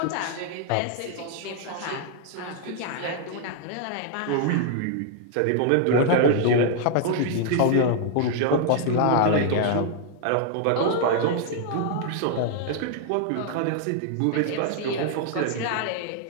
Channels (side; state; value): both; different; correlation 0.00